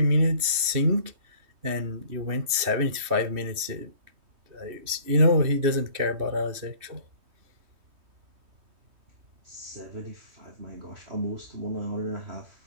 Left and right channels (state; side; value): late; left; 3.2 ms